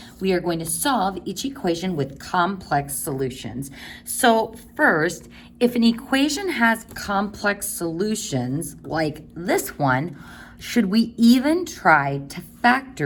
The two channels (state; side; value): identical; both; correlation 1.00